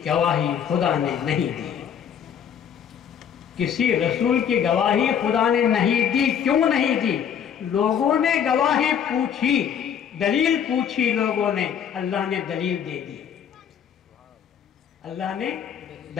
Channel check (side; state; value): right; quieter; 8.3 dB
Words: گواہی خدا نے نہیں دی، کسی رسول کی گواہی خدا نے نہیں دی۔ کیوں نہیں دی؟ لوگوں نے گواہی پوچھی، دلیل پوچھی لوگوں نے، اللہ نے دلیل دے دی، اللہ نے